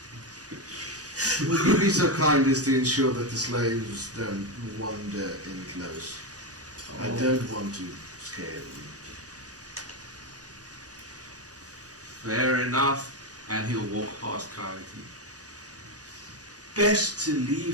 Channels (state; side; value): normal; both; correlation 0.10